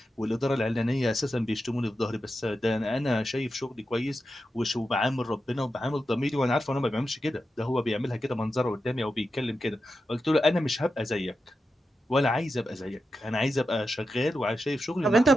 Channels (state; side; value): normal; both; correlation 0.89